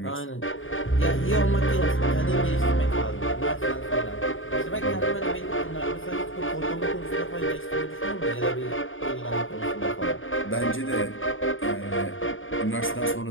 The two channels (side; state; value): right; late; 0.58 ms